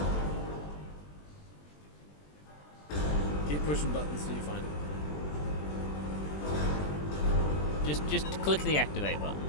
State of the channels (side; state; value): right; late; 20 ms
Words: Keep pushing buttons till you find it. Just click the activate button.